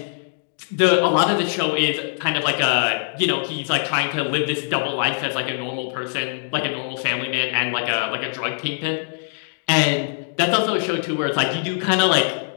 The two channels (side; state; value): right; silent; digital silence